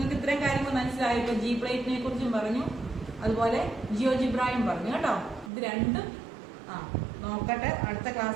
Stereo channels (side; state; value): left; drops out; at 5.5 s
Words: ഇത്രയും കാര്യങ്ങൾ മനസ്സിലായി. ഇപ്പോൾ ജി പ്ലേറ്റിനെ കുറിച്ചും പറഞ്ഞു, അതുപോലെ ജിയോജിബ്രായും പറഞ്ഞു കേട്ടോ. ഇത് രണ്ടും നോക്കട്ടെ, അടുത്ത